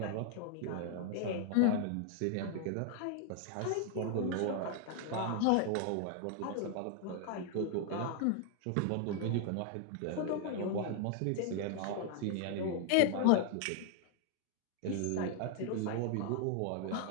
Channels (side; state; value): both; different; correlation 0.00